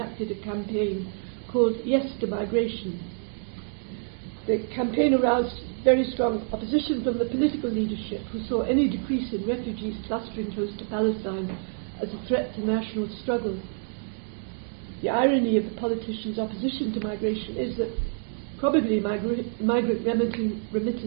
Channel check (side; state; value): left; silent; 60 dB below the other